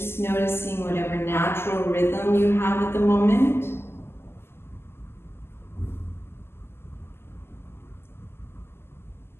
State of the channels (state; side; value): late; right; 0.12 ms